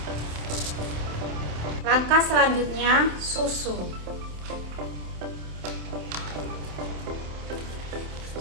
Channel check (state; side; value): late; left; 27 ms